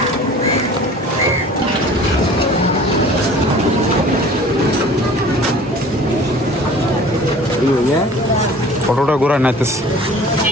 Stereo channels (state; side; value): normal; both; correlation 0.46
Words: অটোটা ঘোরা নাইতেছে